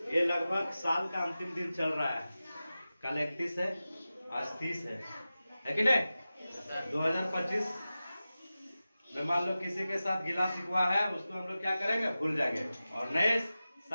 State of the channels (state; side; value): inverted; both; correlation -0.95